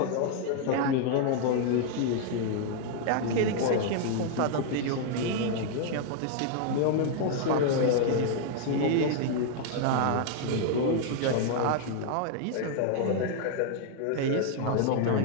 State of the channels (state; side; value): different; both; correlation 0.00